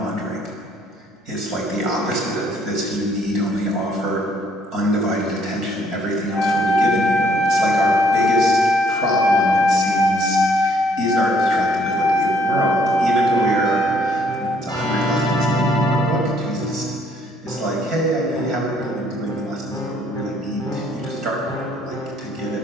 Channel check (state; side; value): normal; both; correlation 0.65